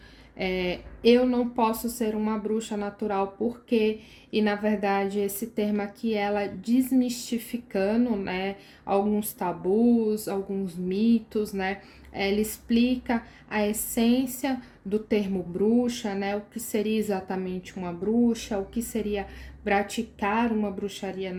Eu não posso ser uma bruxa natural porque, e na verdade esse termo aqui ela desmistificando, né, alguns tabus, alguns mitos, né, ela explica a essência do termo bruxa, né, o que seria exatamente uma bruxa, o que seria praticar uma bruxaria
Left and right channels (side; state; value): both; identical; correlation 1.00